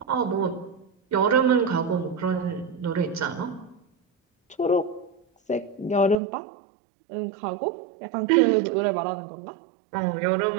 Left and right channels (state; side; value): drops out; left; at 6.2 s